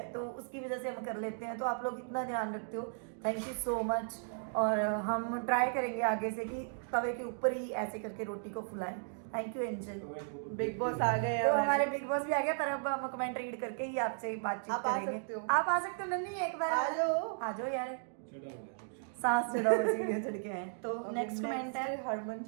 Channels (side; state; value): left; silent; digital silence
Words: तो उसकी वजह से हम कर लेते हैं। तो आप लोग इतना ध्यान रखते हो, थैंक यू सो मच। और हम ट्राई करेंगे आगे से कि तवे के ऊपर ही ऐसे करके रोटी को फुलाएं, thank you Angel. Big boss आ गए तो हैं हमारे बिग बॉस भी आ गए, पर अब हम कमेंट रीड करके ही आपसे बातचीत आप आ करेंगे। सकते हो। आप आ सकते हो नन्ही, एक बार आ जाओ। आ जाओ यार, सांस चढ़ाओ सीढ़ियां चढ़ के आए। तो नेक्स्ट कमेंट है हरमन